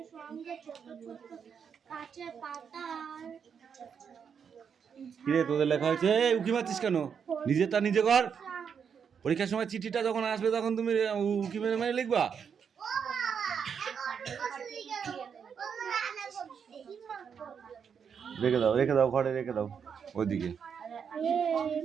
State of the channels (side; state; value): left; quieter; 7.0 dB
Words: সঙ্গে ছোট ছোট কাছে পাতার। কিরে তোদের লেখা হয়েছে? উকি মারছিস কেন? নিজেরটা নিজে কর। পরীক্ষার সময় চিঠিটা যখন আসবে তখন তুমি উকি মেরে মেরে লিখবা। রেখে দাও ঘরে, রেখে দাও ওইদিকে।